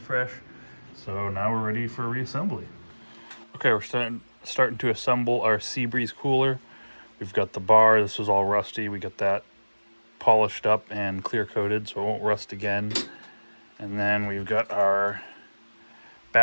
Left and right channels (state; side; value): inverted; both; correlation -1.00